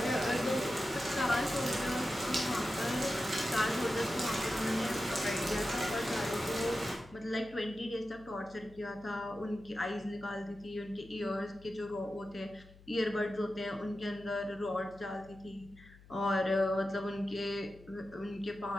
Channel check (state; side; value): noise; left; hum, 22 dB below the sound